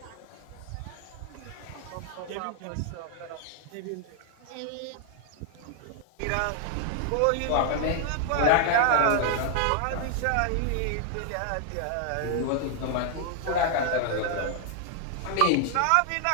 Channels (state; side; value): different; both; correlation 0.00